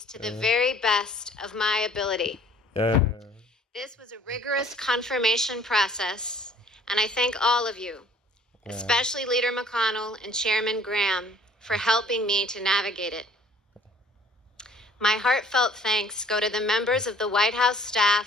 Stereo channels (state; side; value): normal; both; correlation 0.56